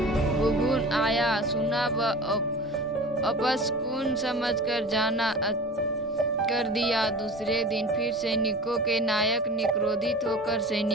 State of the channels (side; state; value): both; normal; correlation 0.36